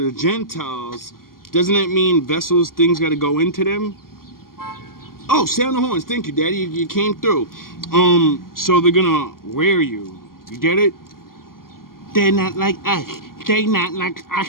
Gentiles, doesn't that mean vessels, things got to go into them? Oh, sound the horns. Thank you, Daddy. You came through. So they're gonna wear you. You get it? They're not like us. They not like us,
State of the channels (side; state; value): right; late; 0.92 ms